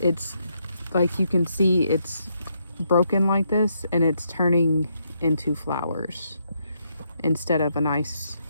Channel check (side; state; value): both; inverted; correlation -0.77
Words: it's like you can see it's broken like this and it's turning into flowers instead of a nice